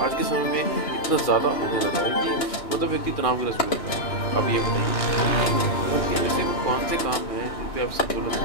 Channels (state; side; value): late; right; 3.0 ms